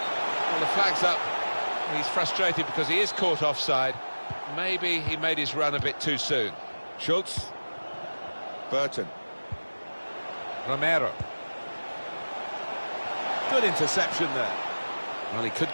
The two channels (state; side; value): inverted; both; correlation -1.00